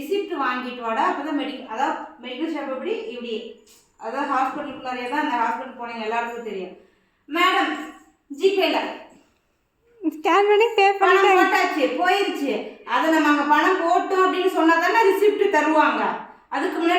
வாங்கிட்டு வாடா, அப்போ தான் அதாவது மெடிக்கல் ஷாப் இப்படி அதாவது ஹாஸ்பிட்டலுக்குள்ளாரே தான். அந்த ஹாஸ்பிட்டல் போனீங்க எல்லாருக்கும் தெரியும். மேடம் ஜிபேல ஸ்கேன் பண்ணி பே பணம் போட்டாச்சு போயிருச்சு. அதை நம்ம அங்கே பணம் போட்டோம் அப்படின்னு சொன்னால் தானே ரிசிப்ட் தருவாங்க. அதுக்கு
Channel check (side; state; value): both; identical; correlation 1.00